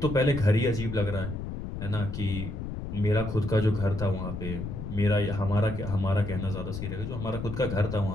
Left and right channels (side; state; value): left; noise; rumble, 6 dB below the sound